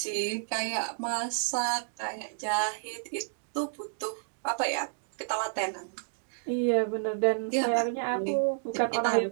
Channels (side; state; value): left; silent; digital silence